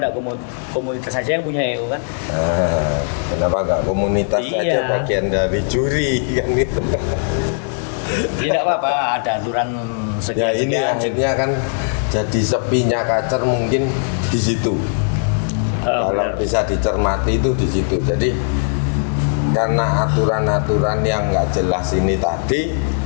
komunitas saja yang punya EO kan? Nah, kenapa nggak komunitas Iya. saja bagian dari juri kan itu? Tidak apa-apa, ada aturan Ya ini sekian-sekian. akhirnya kan jadi sepinya kacer mungkin di situ. Kalau Benar. bisa dicermati itu di situ. Jadi karena aturan-aturan yang nggak jelas ini tadi,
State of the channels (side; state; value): right; silent; digital silence